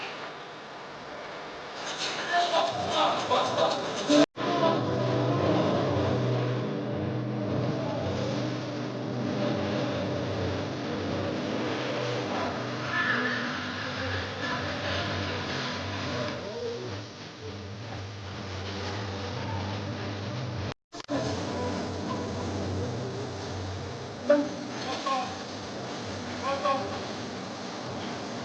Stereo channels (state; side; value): identical; both; correlation 1.00